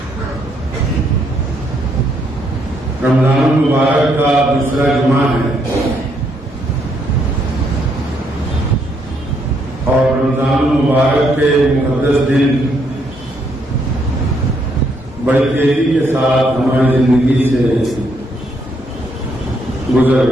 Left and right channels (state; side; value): normal; both; correlation 0.73